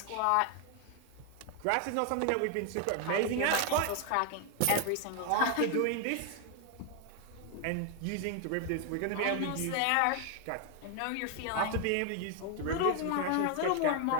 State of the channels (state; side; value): different; both; correlation 0.01